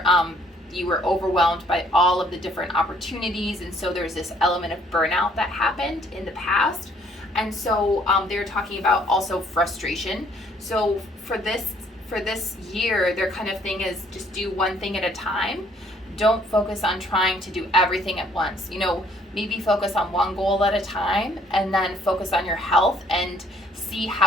you were overwhelmed by all of the different opportunities. And so there's this element of burnout that happened in the past. And so they're talking about also frustration. So for this year, their kind of thing is just do one thing at a time. Don't focus on trying to do everything at once. You know, maybe focus on one goal at a time, and then focus on your health and see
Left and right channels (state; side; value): normal; both; correlation 0.63